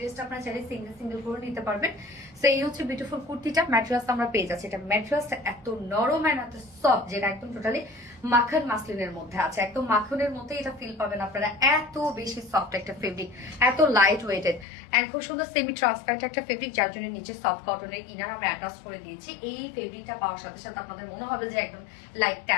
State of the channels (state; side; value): drops out; right; at 14.7 s